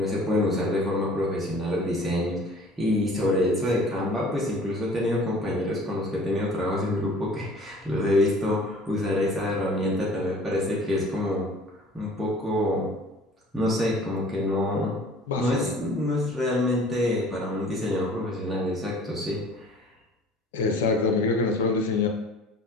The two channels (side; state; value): both; normal; correlation 0.49